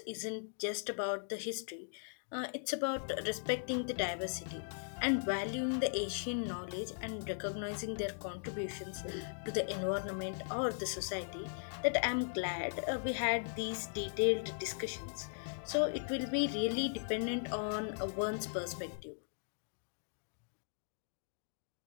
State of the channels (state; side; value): silent; right; digital silence